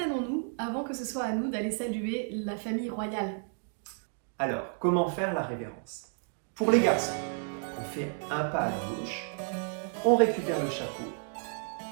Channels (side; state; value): left; silent; 56 dB below the other